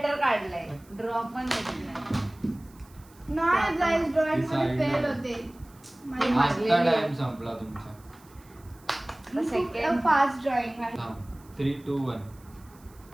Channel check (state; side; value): noise; right; hiss, 27 dB below the sound